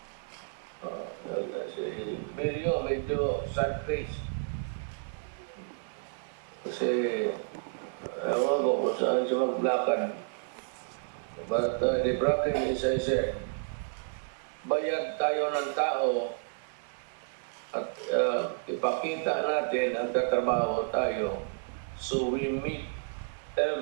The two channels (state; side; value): silent; left; 57 dB below the other